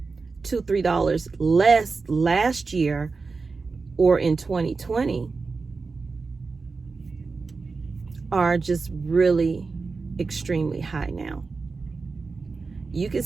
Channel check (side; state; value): left; quieter; 4.3 dB